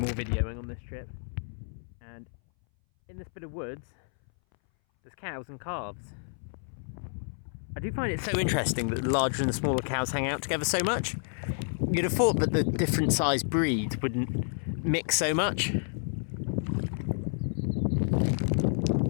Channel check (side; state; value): right; silent; 58 dB below the other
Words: videoing on this trip, and in this bit of woods there's cows and calves. I do find it so interesting that the larger and the smaller cows hang out together so much. You'd have thought that the different sized breeds wouldn't mix so much.